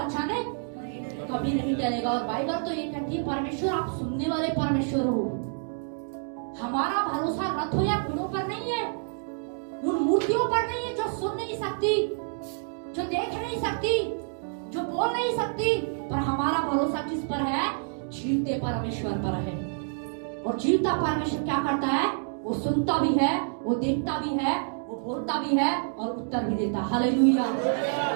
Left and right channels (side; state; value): left; silent; 57 dB below the other